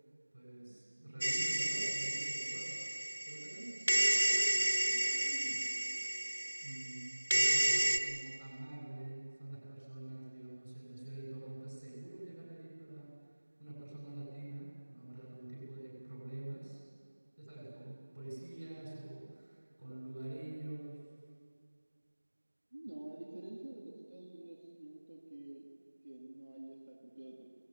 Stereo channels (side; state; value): both; inverted; correlation -1.00